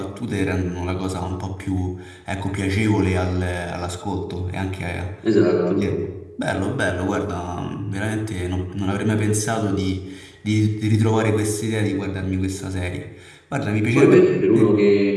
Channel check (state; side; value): identical; both; correlation 1.00